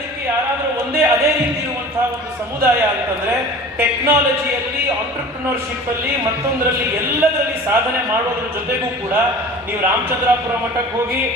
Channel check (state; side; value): normal; both; correlation 0.41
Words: ಯಾರಾದರೂ ಅದೇ ರೀತಿ ಇರುವಂತಹ ಒಂದು ಸಮುದಾಯ ಅಂತಂದ್ರೆ ಟೆಕ್ನಾಲಜಿಯಲ್ಲಿ, ಆಂಟ್ರಪ್ರಿನರ್ಶಿಪ್ ಅಲ್ಲಿ, ಮತ್ತೊಂದರಲ್ಲಿ ಎಲ್ಲದರಲ್ಲಿ ಸಾಧನೆ ಮಾಡೋದ್ರ ಜೊತೆಗೂ ಕೂಡ ನೀವು ರಾಮಚಂದ್ರಾಪುರ ಮಠಕ್ಕೆ ಹೋಗಿ,